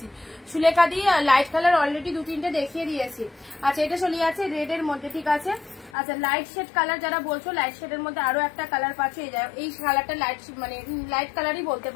Sulekha di light colour already 2-3টে দেখিয়ে দিয়েছি। আচ্ছা, এটা চলে যাচ্ছে রেড এর মধ্যে, ঠিক আছে। আচ্ছা, লাইট শেড কালার যারা বলছো, লাইট শেডের মধ্যে আরো একটা কালার পাচ্ছে। এই কালারটা লাইট মানে লাইট কালারই বলতে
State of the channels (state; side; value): drops out; right; at 5.9 s